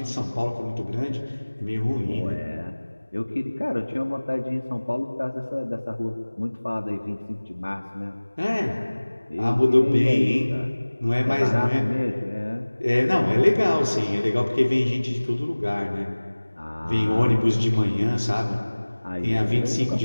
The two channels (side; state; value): both; inverted; correlation -1.00